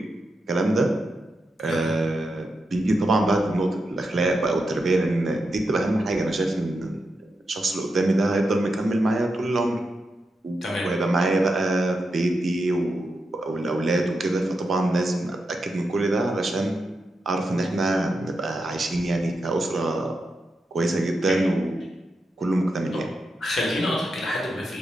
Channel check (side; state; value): both; normal; correlation 0.87